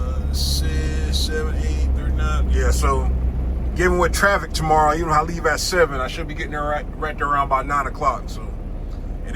6, 7, 8, 39. Yeah, so given with traffic tomorrow, even if I leave at 7, I should be getting there right there around about 9 o'clock. So it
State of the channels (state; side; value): identical; both; correlation 1.00